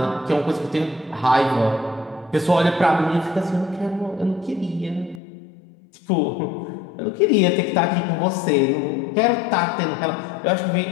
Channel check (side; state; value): right; drops out; at 5.2 s